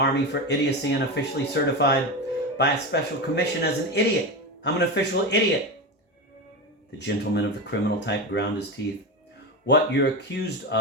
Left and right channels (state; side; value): normal; both; correlation 0.19